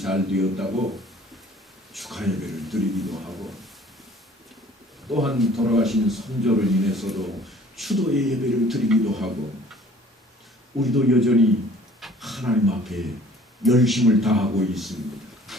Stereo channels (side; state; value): both; normal; correlation 0.52